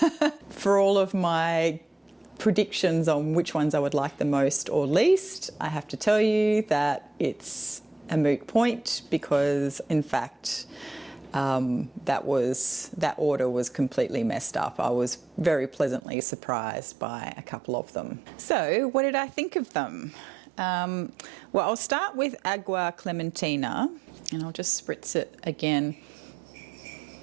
For all of my predictions on which ones I would like the most or least, I have to tell you that it's a moot point because, in fact, that order was completely messed up. I was very pleasantly surprised by a couple of them. So what did I think of them? Well, I'll start with Agua Clementina, and I'll just spritz it again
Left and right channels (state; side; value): drops out; left; at 16.0 s